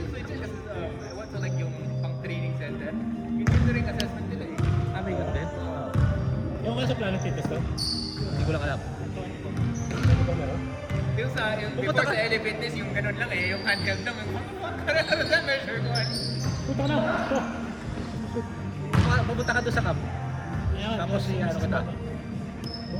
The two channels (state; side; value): identical; both; correlation 1.00